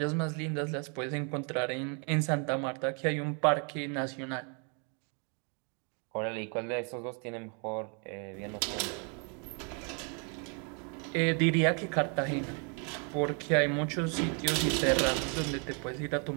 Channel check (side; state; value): left; quieter; 37.6 dB